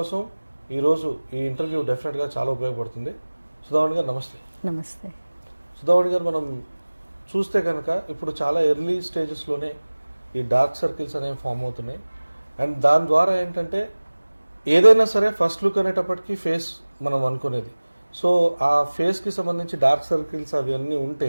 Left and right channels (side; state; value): both; inverted; correlation -1.00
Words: ఈరోజు ఈ ఇంటర్వ్యూ డెఫినెట్గా చాలా ఉపయోగపడుతుంది. సుధావాణి గారు నమస్తే. నమస్తే. సుధావాణి గారు, మనం చూస్తే కనుక ఇప్పుడు చాలా ఎర్లీ స్టేజెస్లోనే ఈ డార్క్ సర్కిల్స్ అనేవి ఫామ్ అవుతున్నాయి. అండ్ దాని ద్వారా ఏంటంటే ఏదైనా సరే ఫస్ట్ లుక్ అనేటప్పటికీ ఫేస్ మనం అనుకునేది. సో ఆ ఫేస్కి సంబంధించి డార్క్ సర్కిల్స్ అవన్నీ